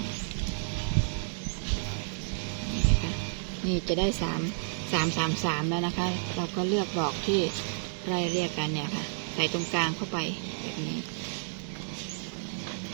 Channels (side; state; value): left; silent; 57 dB below the other